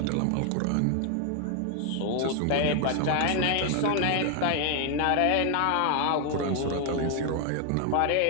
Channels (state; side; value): different; both; correlation 0.00